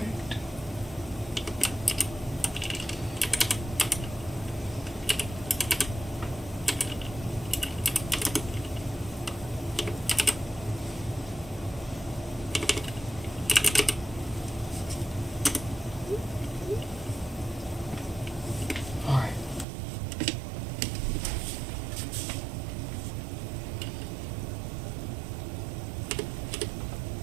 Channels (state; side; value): drops out; left; at 19.7 s